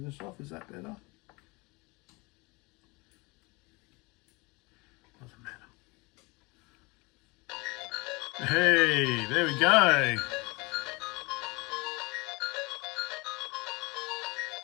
this off. Is that better? Doesn't matter. Hey, there we go.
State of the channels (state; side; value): quieter; right; 26.0 dB